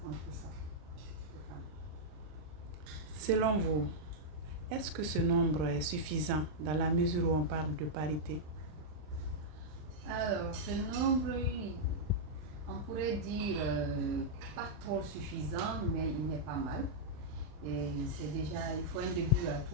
femmes. Selon vous, est-ce que ce nombre est suffisant dans la mesure où on parle de parité? Alors, ce nombre, on pourrait dire pas trop suffisant, mais il n'est pas mal. Et c'est déjà, il faut un début à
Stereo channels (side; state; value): left; late; 39 ms